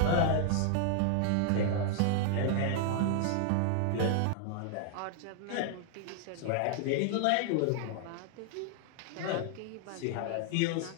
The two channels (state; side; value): different; both; correlation 0.00